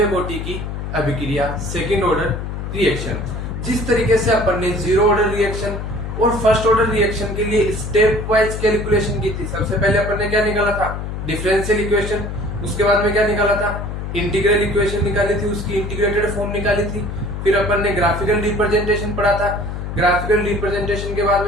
कोटि की अभिक्रिया, सेकेंड ऑर्डर रिएक्शन। जिस तरीके से अपन ने जीरो ऑर्डर रिएक्शन और फर्स्ट ऑर्डर रिएक्शन के लिए स्टेप वाइज कैलकुलेशन की थी। सबसे पहले अपन ने क्या निकाला था? Differential equation. उसके बाद में क्या निकाला था? इंटीग्रल इक्वेशन निकाली थी, उसकी इंटीग्रेटेड फॉर्म निकाली थी। फिर अपन ने ग्राफिकल रिप्रेजेंटेशन पढ़ा था। ग्राफिकल रिप्रेजेंटेशन के बाद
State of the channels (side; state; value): left; noise; hum, 6 dB below the sound